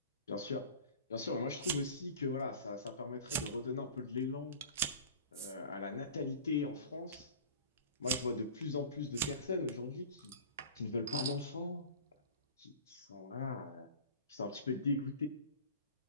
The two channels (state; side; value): inverted; both; correlation -0.40